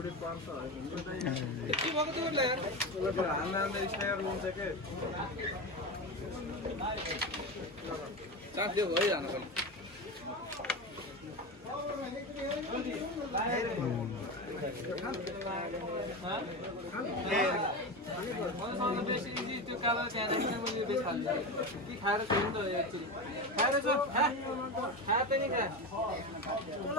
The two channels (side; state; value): both; normal; correlation 0.21